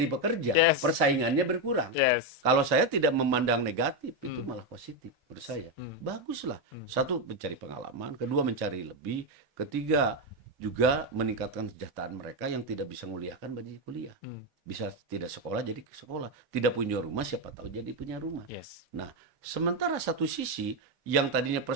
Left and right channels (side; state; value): both; normal; correlation 0.07